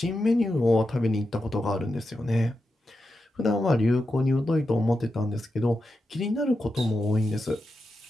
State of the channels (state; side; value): normal; both; correlation 0.88